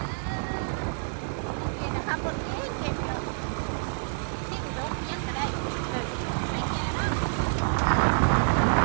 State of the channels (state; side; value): silent; left; digital silence